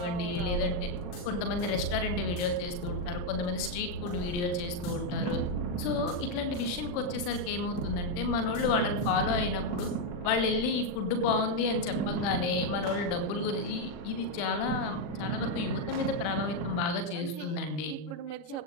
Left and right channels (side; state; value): right; late; 40 ms